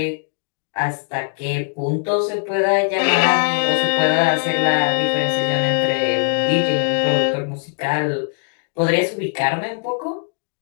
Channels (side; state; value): right; silent; digital silence